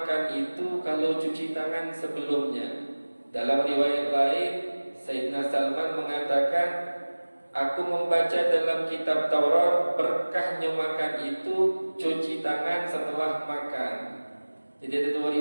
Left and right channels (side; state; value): both; inverted; correlation -1.00